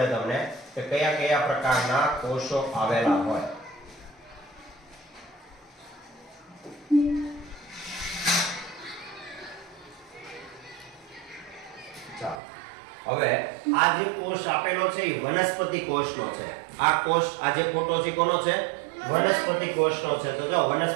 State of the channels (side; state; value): left; drops out; at 12.4 s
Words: તમને કે કયા કયા પ્રકારના કોષો આવેલા હોય. હવે આ જે કોષ આપેલો છે એ વનસ્પતિ કોષનો છે. આ કોષ, આ જે ફોટો છે કોનો છે? વનસ્પતિ કોષનો છે. તો જો